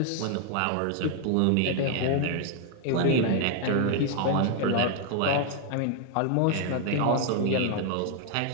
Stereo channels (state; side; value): different; both; correlation 0.00